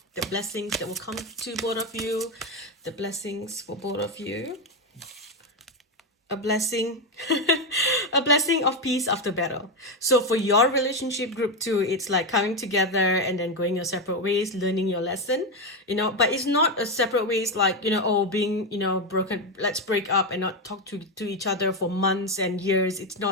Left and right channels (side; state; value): both; normal; correlation 0.10